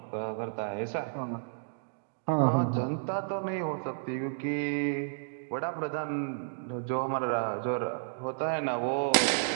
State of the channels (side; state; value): left; silent; digital silence